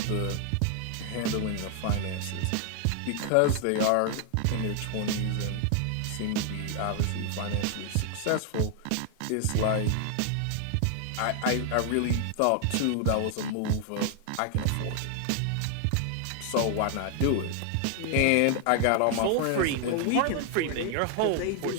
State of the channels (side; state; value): both; different; correlation 0.00